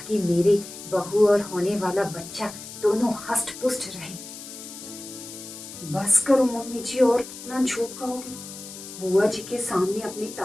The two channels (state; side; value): noise; left; hiss, 13 dB below the sound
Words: मेरी बहू और होने वाला बच्चा दोनों हष्ट पुष्ट रहे। बस करो मम्मी जी, और कितना झूठ कहोगी? बुआ जी के सामने अपनी